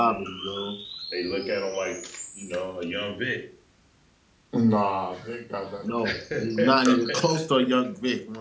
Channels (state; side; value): identical; both; correlation 1.00